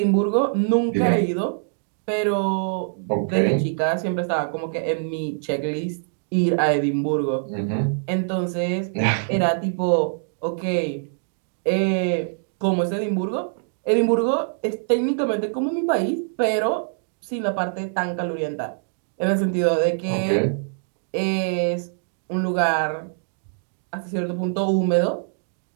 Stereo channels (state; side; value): silent; left; digital silence